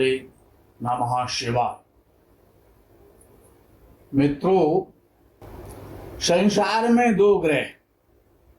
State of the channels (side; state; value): both; identical; correlation 1.00